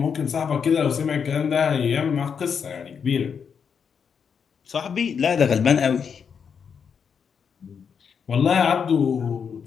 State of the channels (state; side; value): quieter; right; 6.7 dB